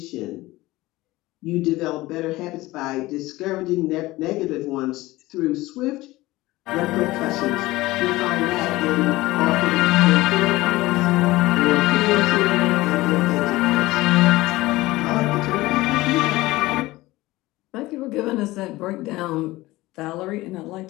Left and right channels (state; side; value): quieter; right; 18.9 dB